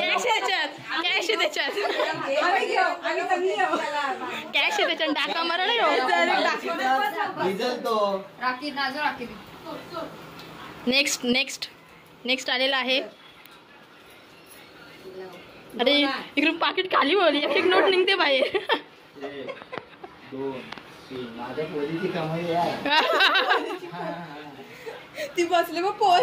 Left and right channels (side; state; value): both; identical; correlation 1.00